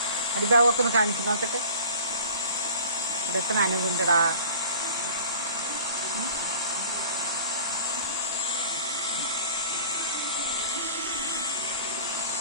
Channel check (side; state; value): both; inverted; correlation -0.43